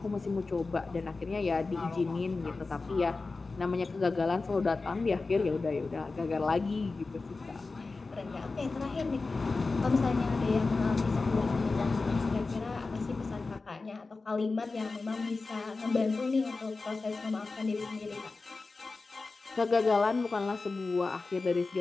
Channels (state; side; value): quieter; right; 3.8 dB